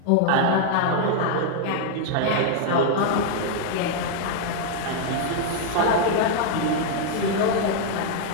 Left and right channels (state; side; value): different; both; correlation -0.01